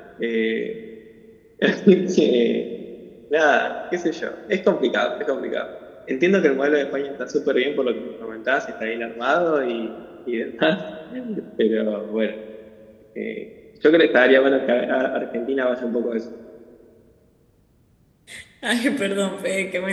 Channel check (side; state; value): both; identical; correlation 1.00